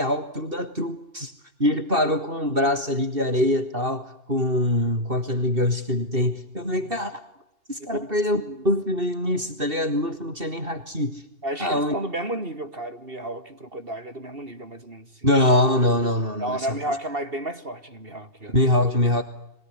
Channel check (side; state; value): left; late; 2.7 ms